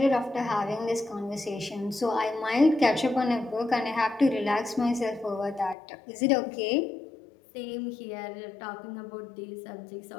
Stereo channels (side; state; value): right; drops out; at 5.8 s